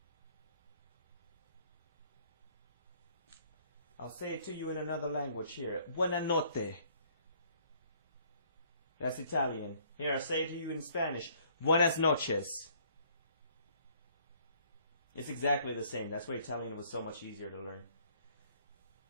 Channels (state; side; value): inverted; both; correlation -0.61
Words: I'll say it to you in another language here. Buonanotte. That's Italian. Here, I'll say it to you in Spanish. Buenas noches. It's exactly the same. That's why Italian was so much easier to learn.